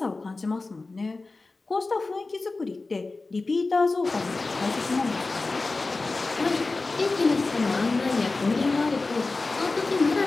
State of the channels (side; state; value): right; quieter; 3.6 dB